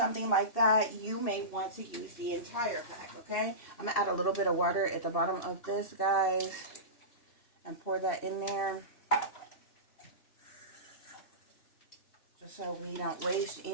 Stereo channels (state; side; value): late; right; 2.7 ms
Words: like that, you may want to use the entire pack, okay? I'm going to add a little bit of water at the bottom of this, guys, and pour that in there, just so we don't waste